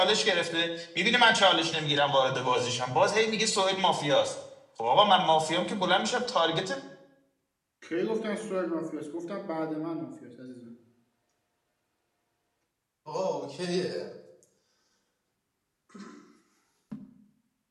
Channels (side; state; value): both; identical; correlation 1.00